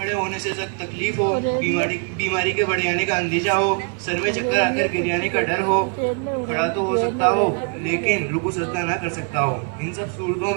होने से सख्त तकलीफ हो, बीमारी के बढ़ जाने का अंदेशा हो, सर में चक्कर आकर गिर जाने का डर हो, खड़ा तो हो सकता हो लेकिन रुकू सजदा ना कर सकता हो। इन सब सूरतों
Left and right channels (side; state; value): left; quieter; 39.9 dB